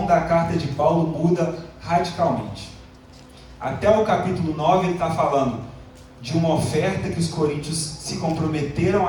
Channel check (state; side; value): identical; both; correlation 1.00